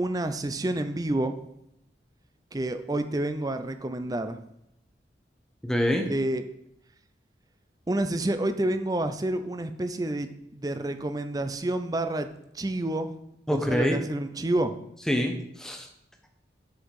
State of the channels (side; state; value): both; normal; correlation 0.81